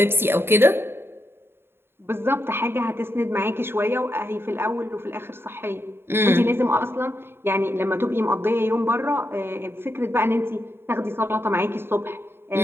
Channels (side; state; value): left; late; 0.11 ms